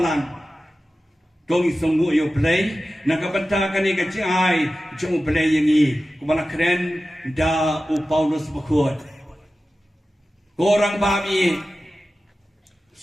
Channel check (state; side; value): normal; both; correlation 0.95